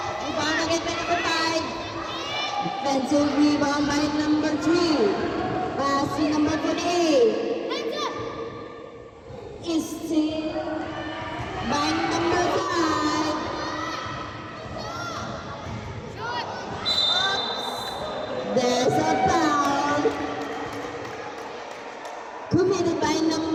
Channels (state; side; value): identical; both; correlation 1.00